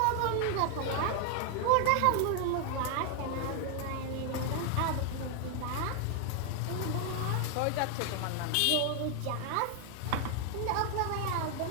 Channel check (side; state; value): both; different; correlation 0.00